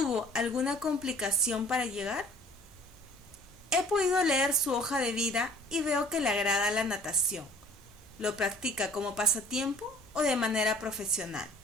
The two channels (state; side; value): normal; both; correlation 0.52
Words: alguna complicación para llegar? He podido leer su hoja de vida y veo que le agrada la natación. ¿Lo practica como pasatiempo o de manera profesional?